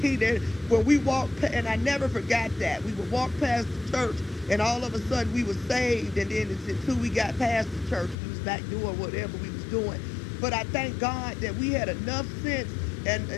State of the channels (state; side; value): drops out; right; at 8.2 s